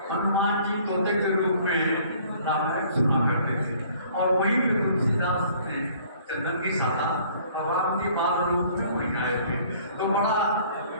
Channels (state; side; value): inverted; both; correlation -0.56